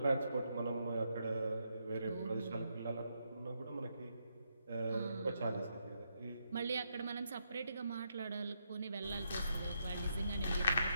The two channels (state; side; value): inverted; both; correlation -0.79